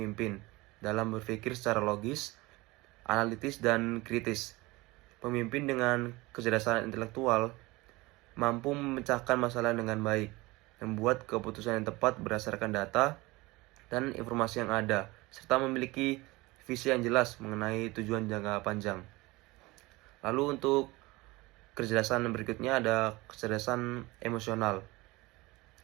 dalam berpikir secara logis, analitis, dan kritis. Pemimpin dengan kecerdasan intelektual mampu memecahkan masalah dengan baik, membuat keputusan yang tepat berdasarkan data dan informasi yang ada, serta memiliki visi yang jelas mengenai tujuan jangka panjang. Lalu untuk kecerdasan berikutnya ada kecerdasan emosional.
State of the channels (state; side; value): quieter; left; 21.8 dB